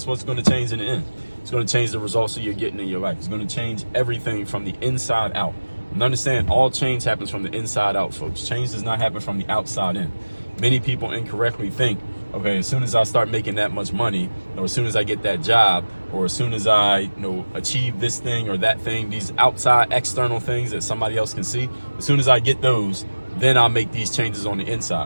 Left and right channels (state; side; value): inverted; both; correlation -1.00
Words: what's going to change in the end? It's going to change the results that you're getting in your life. It's going to change everything from the inside out. And understand, all change happens from the inside out, folks. Change does not happen from the outside in. Many people incorrectly think, okay, as soon as I start making that much money, or as soon as I get that job, or as soon as I achieve this thing or that thing, these outside external things that somebody else can see, as soon as I get those, then I'll make these changes on the